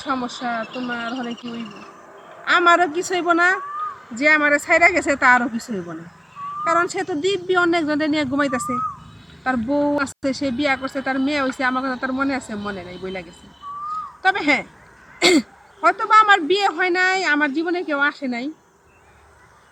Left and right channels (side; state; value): both; identical; correlation 1.00